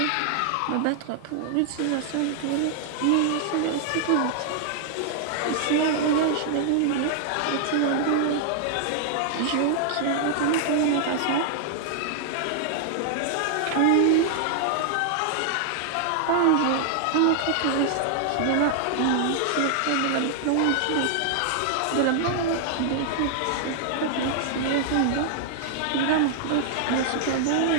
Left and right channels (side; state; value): both; different; correlation -0.01